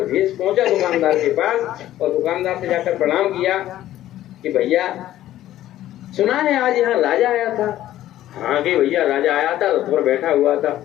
भेष पहुंचा दुकानदार के पास और दुकानदार से जाकर प्रणाम किया कि भैया सुना है आज यहाँ राजा आया था। हाँ कि भैया राजा आया था, रथ पर बैठा हुआ था।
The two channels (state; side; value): quieter; right; 13.4 dB